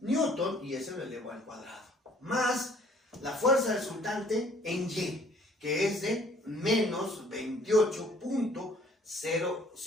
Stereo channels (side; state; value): both; normal; correlation 0.58